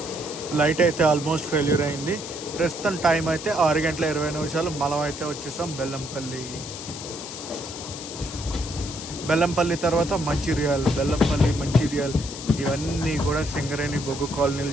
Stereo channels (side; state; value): left; noise; hiss, 10 dB below the sound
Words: లైట్ అయితే ఆల్మోస్ట్ ఫెయిల్యూర్ అయింది. ప్రస్తుతం టైం అయితే 6 గంటల 20 నిమిషాలు. మనం అయితే వచ్చేసాం బెల్లంపల్లి. బెల్లంపల్లి తర్వాత మంచిర్యాల్, బెల్లంపల్లి, మంచిర్యాల్ ఇవన్నీ కూడా సింగరేణి బొగ్గు